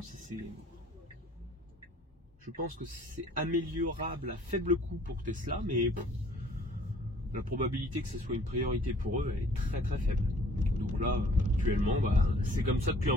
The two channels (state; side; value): normal; both; correlation 0.55